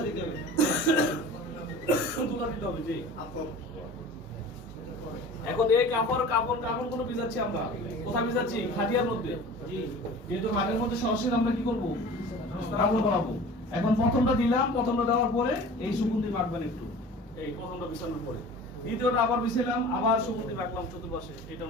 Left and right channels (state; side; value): normal; both; correlation 0.41